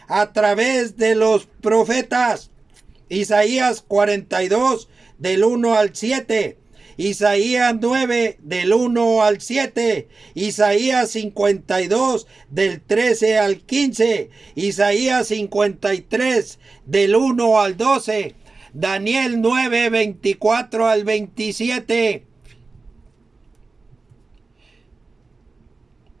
a través de los profetas. Isaías 42 del 1 al 7. Isaías 9 del 1 al 7. Isaías 52 del 13 al 15. Isaías 53 del 1 al 12. Daniel 9, 24 al 27.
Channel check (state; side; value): quieter; left; 3.8 dB